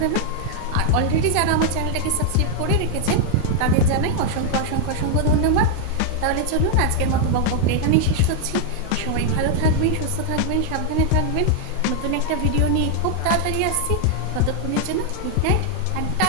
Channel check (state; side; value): different; both; correlation 0.00